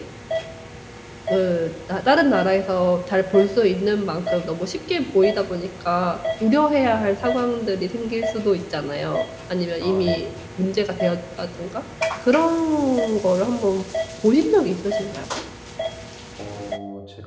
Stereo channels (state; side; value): identical; both; correlation 1.00